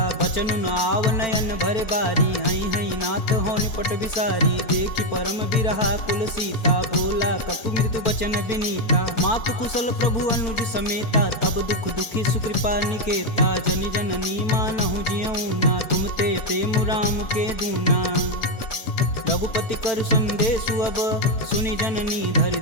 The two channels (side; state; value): right; late; 4.4 ms